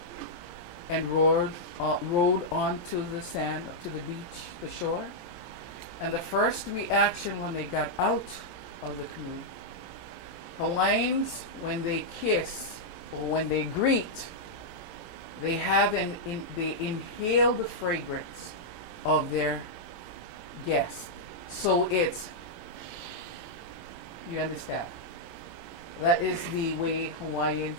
and rowed onto the sand, to the beach, the shore, and the first reaction when they got out of the canoe, Hawaiians, when they kiss or when they greet, they they inhale the fragrance of their guest. So it's, you understand? That is the way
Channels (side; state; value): right; late; 17 ms